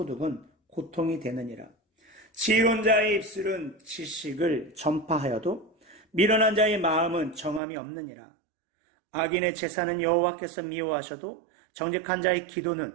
고통이 되느니라. 지혜로운 자의 입술은 지식을 전파하여도 미련한 자의 마음은 정함이 없느니라. 악인의 제사는 여호와께서 미워하셔도 정직한 자의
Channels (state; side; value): drops out; left; at 7.6 s